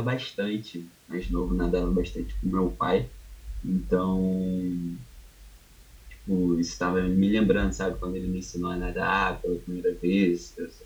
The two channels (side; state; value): both; identical; correlation 1.00